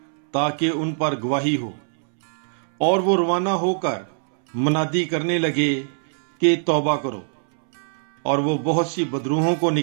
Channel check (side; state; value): left; silent; 64 dB below the other